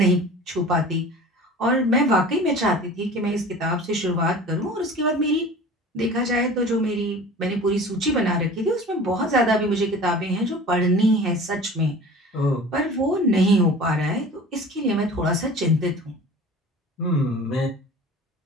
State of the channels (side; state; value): both; normal; correlation 0.40